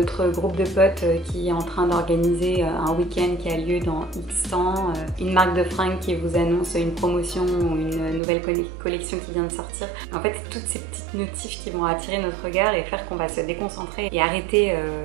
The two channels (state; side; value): drops out; left; at 8.2 s